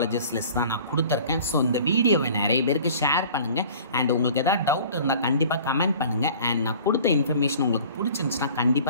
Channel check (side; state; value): both; inverted; correlation -0.47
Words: லிஸ்ட் தான் நான் கொடுத்துருக்கேன். ஸோ இந்த வீடியோவை நிறைய பேருக்கு ஷேர் பண்ணுங்கள். அண்ட் உங்களுக்கு எதாவது டவுட் இருந்தால் கண்டிப்பாக கமெண்ட் பண்ணுங்கள். அண்ட் நான் கொடுத்த இன்ஃபர்மேஷன் உங்களுக்கு பிடிச்சிருந்துச்சுன்னா